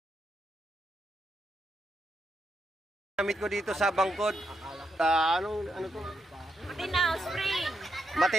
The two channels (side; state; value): both; normal; correlation 0.82